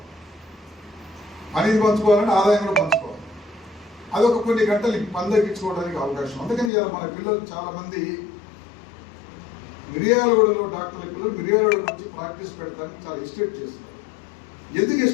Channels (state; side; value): drops out; right; at 6.7 s